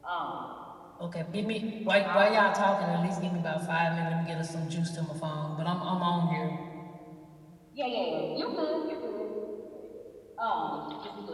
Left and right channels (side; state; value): both; identical; correlation 1.00